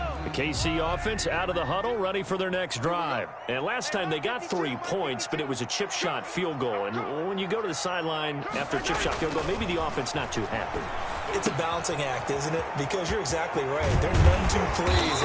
KC offense out of the huddle, ready for their next drive. And last time they got 3 points, but it was a chip shot field goal. And when you go to the sideline after a chip shot field goal, maybe the offense not too happy. It's a balancing act, isn't it? Because you're exactly right. They're none too pleased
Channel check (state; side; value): identical; both; correlation 1.00